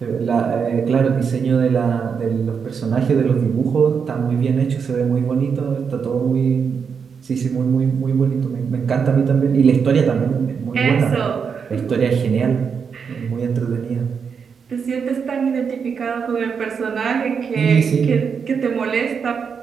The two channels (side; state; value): left; quieter; 6.3 dB